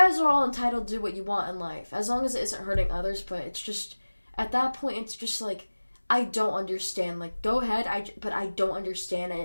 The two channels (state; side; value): inverted; both; correlation -1.00